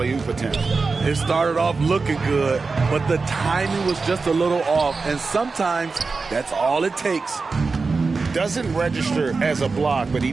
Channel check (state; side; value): quieter; left; 4.3 dB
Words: attempt. It started off looking good, but the timing was just a little off, and sometimes that's all it takes. Doesn't register as a block, but he